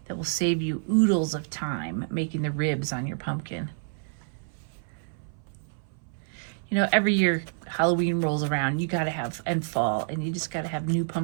that will save you oodles of time making the ribs on your pumpkin. You know, every year Halloween rolls around, you gotta have, and fall, and you just gotta have new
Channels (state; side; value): silent; left; 58 dB below the other